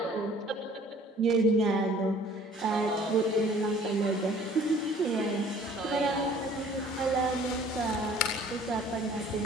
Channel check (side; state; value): both; normal; correlation 0.53